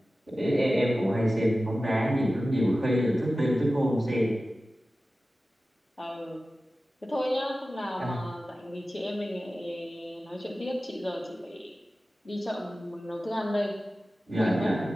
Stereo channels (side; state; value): both; normal; correlation 0.95